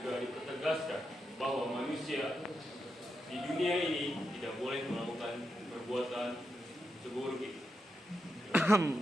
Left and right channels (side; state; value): both; normal; correlation 0.86